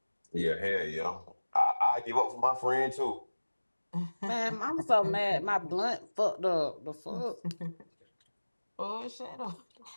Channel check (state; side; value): inverted; both; correlation -1.00